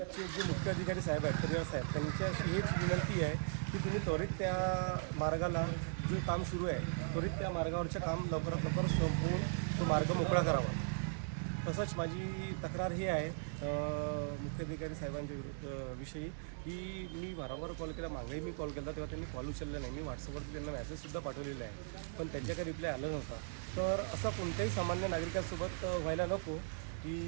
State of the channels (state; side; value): silent; left; digital silence